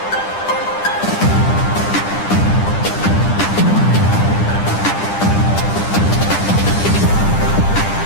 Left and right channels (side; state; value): right; late; 10 ms